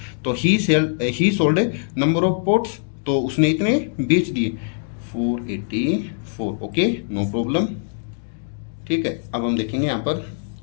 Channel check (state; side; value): silent; right; digital silence